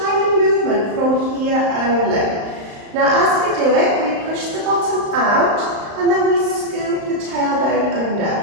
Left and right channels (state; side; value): late; left; 35 ms